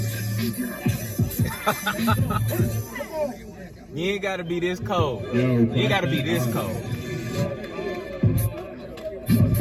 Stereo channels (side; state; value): both; identical; correlation 1.00